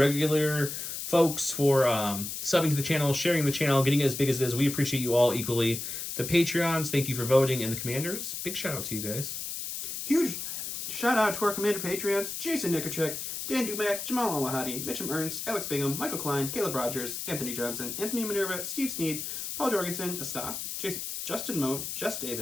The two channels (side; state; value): left; noise; hiss, 5 dB below the sound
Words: folks, for subbing to the channel, sharing the channel, getting it as big as it is. We appreciate you all equally. The Patreons, thank you for voting, and the Commanders, big shout out to you guys. Huge shout out to our Commander Patreons: Jason Nikerchek, Dan Dumack, Jamal Al-Wahadi, Mitchum Ernst, Alex Bingham, Michael Klein, Caleb Rogers, Anthony Johnson, Anthony Minerva, Steve Sneed, Paul Jorgensen, Astaf, Justin Moe, Jess